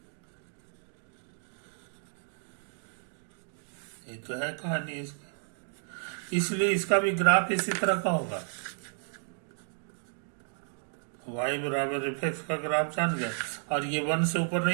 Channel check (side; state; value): left; silent; 56 dB below the other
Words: ये तो है कहानी इसकी, इसलिए इसका भी ग्राफ इसी तरह का होगा। y बराबर एफ एक्स का ग्राफ जान गए, और ये 1 से ऊपर